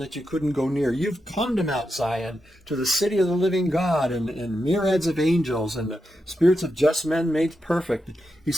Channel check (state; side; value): normal; both; correlation 0.87